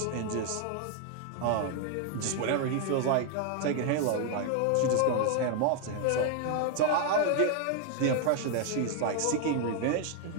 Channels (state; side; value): different; both; correlation 0.00